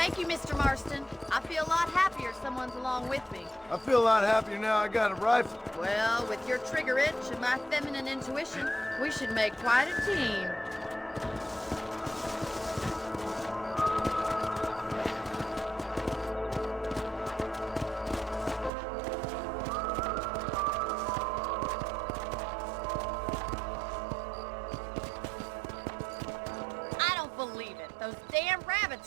you, Mr. Marston. I feel a lot happier someone's along with me. I feel a lot happier now I got a rifle. Well, with your trigger itch and my feminine intuition, we should make quite a team. I don't believe it. Those damn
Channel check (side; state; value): left; drops out; at 18.7 s